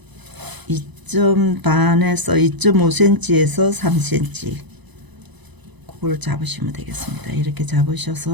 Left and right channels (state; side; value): late; left; 1.0 ms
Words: 반에서 2.5cm에서 3cm 그걸 잡으시면 되겠습니다. 이렇게